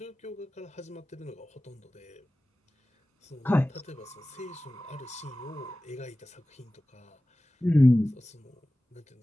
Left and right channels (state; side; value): normal; both; correlation 0.96